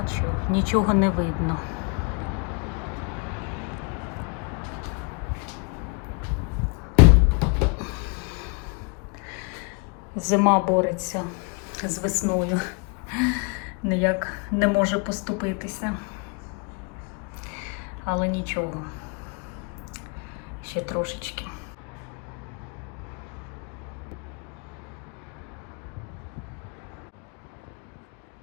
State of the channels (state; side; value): quieter; right; 35.1 dB